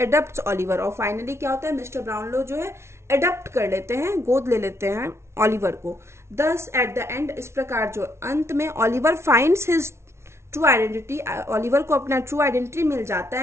ऑलिवर, और फाइनली क्या होता है, मिस्टर ब्राउनलो जो है एडप्ट कर लेते हैं, गोद ले लेते हैं ऑलिवर को। दस एट द एंड, इस प्रकार जो अंत में Oliver finds his true identity, Oliver को अपना ट्रू आइडेंटिटी मिल जाता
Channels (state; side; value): late; left; 0.13 ms